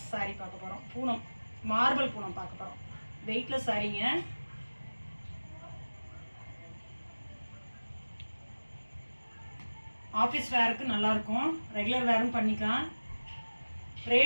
சாரீ பார்க்க போகிறோம். பூனம், மார்பிள் பூனம் பார்க்க போகிறோம். வெயிட்லெஸ் சாரீங்க. ஆஃபீஸ் வேருக்கு நல்லாயிருக்கும், ரெகுலர் வேரும் பண்ணிக்கலாம்.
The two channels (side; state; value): both; inverted; correlation -1.00